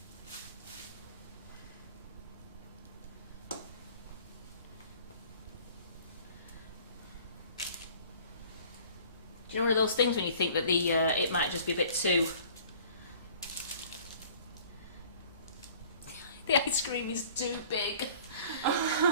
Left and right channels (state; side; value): inverted; both; correlation -0.51